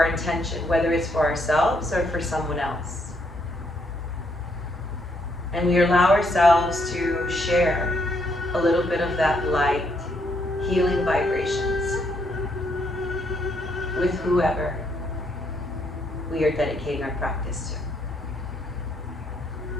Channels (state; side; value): normal; both; correlation 0.73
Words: intention, whether it's for ourselves or for someone else. And we allow ourselves to share a little bit of that light, healing vibrations with whoever we are dedicating our practice to.